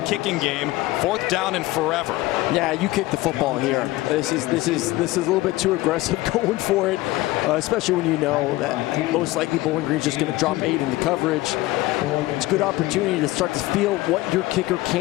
game. Fourth down and forever. Yeah, you kick the football here. This is a little bit too aggressive going for it, especially when you know that most likely Bowling Green's just going to drop 8 in the coverage. It's a good opportunity to start to feel what your kicker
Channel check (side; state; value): right; quieter; 18.6 dB